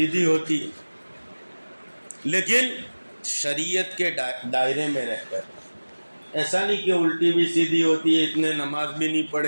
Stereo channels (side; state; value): both; inverted; correlation -1.00